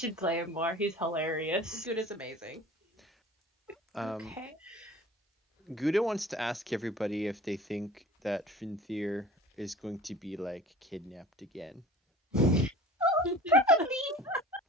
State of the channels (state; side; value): normal; both; correlation 0.43